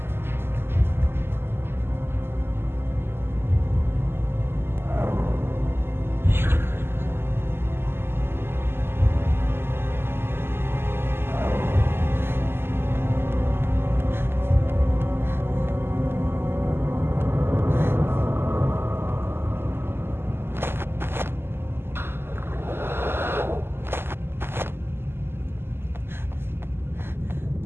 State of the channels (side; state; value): left; late; 0.11 ms